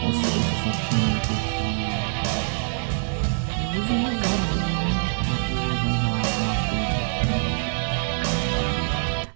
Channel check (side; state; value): left; silent; digital silence